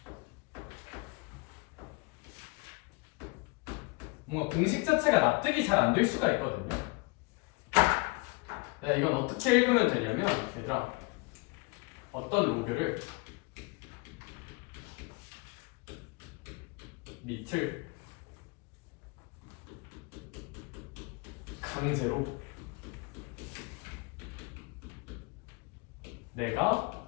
뭔가 공식 자체가 납득이 잘 안 될 수가 있거든요. 이건 어떻게 읽으면 되냐면, 얘들아, 어떤 로그를 밑을 강제로 내가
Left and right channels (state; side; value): quieter; right; 28.4 dB